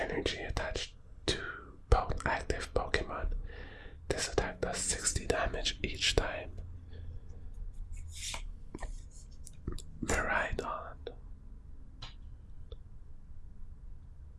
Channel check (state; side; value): identical; both; correlation 1.00